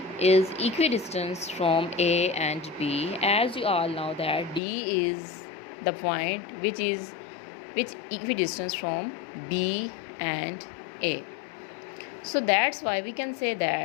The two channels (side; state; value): right; drops out; at 4.6 s